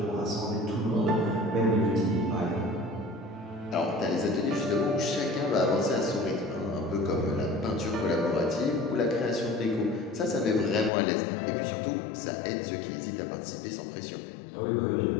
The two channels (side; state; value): right; drops out; at 10.9 s